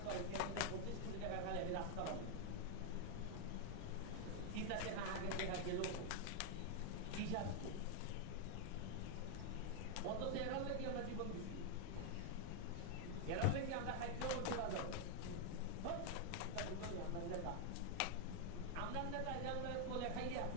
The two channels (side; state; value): both; different; correlation 0.00